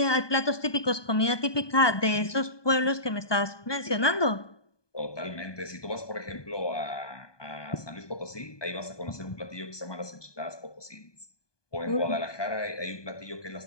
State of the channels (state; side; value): late; right; 1.2 ms